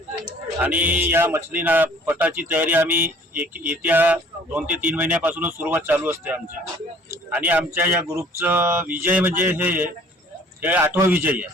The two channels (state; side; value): normal; both; correlation 0.53